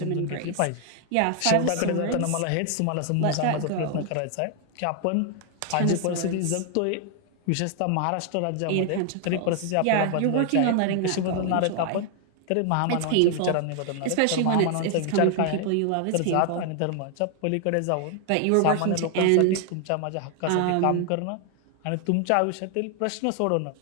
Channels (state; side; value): different; both; correlation 0.00